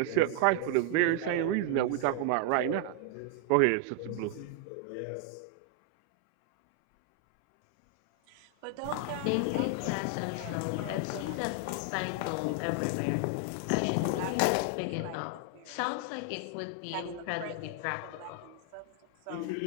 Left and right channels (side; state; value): both; different; correlation 0.00